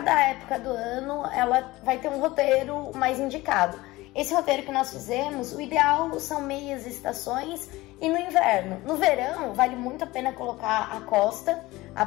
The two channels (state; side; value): quieter; right; 19.5 dB